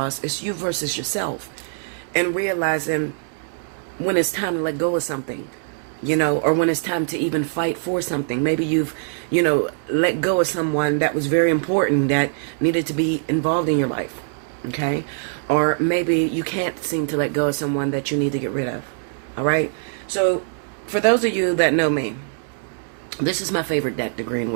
It's you versus yourself. And realizing when it's time to let go of something, or when it's time to even fight for something. Maybe you've, let go of someone that was very important that needed to be involved in your life. Okay? Or maybe you can't seem to let go of someone that you need to get rid of. All right? So for those of you that know me, This is my favorite deck, the Green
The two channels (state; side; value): silent; left; digital silence